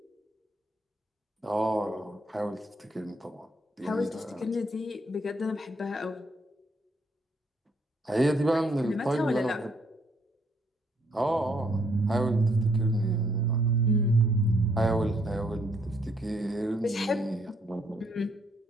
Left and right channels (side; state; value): both; normal; correlation 0.70